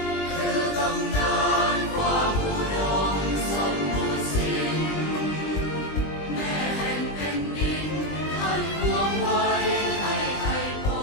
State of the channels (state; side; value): late; right; 20 ms